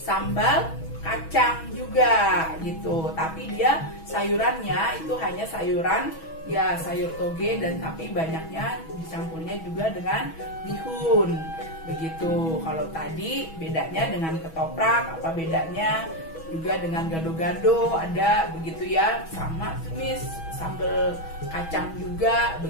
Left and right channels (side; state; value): right; late; 6.2 ms